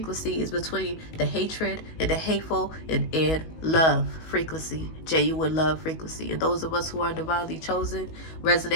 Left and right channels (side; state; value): right; late; 19 ms